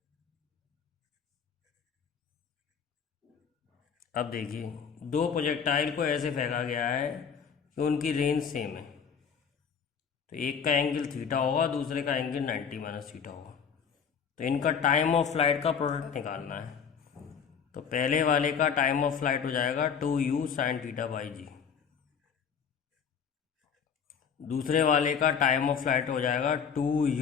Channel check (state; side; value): quieter; right; 6.9 dB